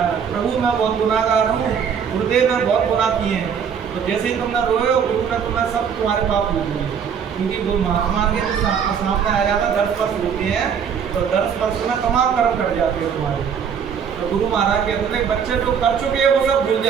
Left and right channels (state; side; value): quieter; left; 7.2 dB